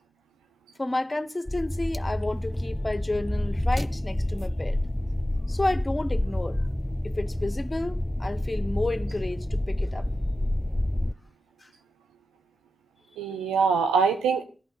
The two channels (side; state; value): both; normal; correlation 0.90